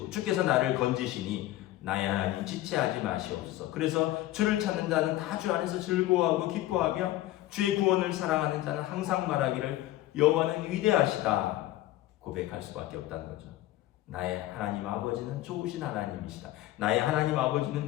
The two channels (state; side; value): quieter; right; 15.5 dB